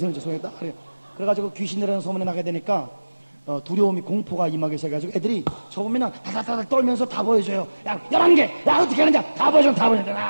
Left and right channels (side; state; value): both; inverted; correlation -1.00